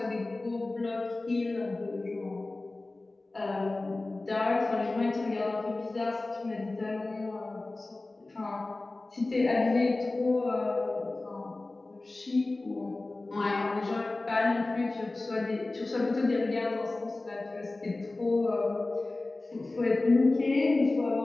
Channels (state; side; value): quieter; right; 3.1 dB